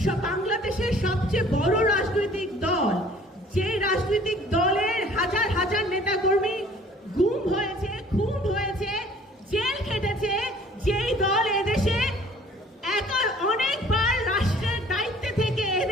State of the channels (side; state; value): both; normal; correlation 0.53